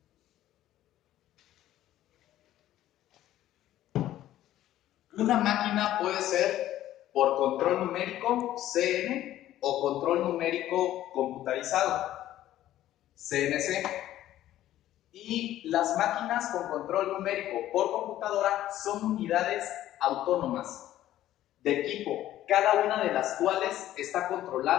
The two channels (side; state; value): right; quieter; 13.3 dB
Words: Una máquina puede ser por control numérico, CN, o control numérico computarizado, CNC. Y las máquinas con control numérico por computadora son unidades autónomas de equipo, cada una de las cuales está